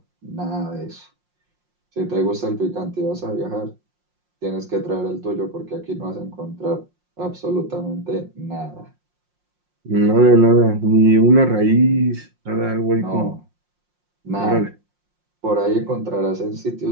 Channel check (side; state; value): left; late; 5.6 ms